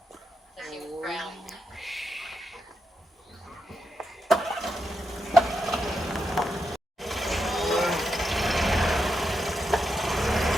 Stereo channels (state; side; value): normal; both; correlation 0.85